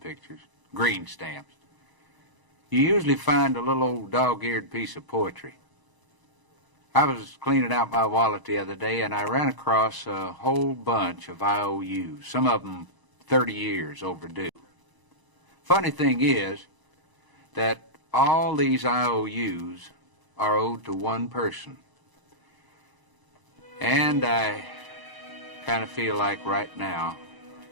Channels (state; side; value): late; left; 1.0 ms